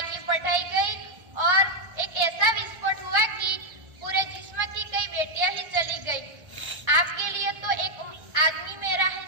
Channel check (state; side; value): late; left; 1.3 ms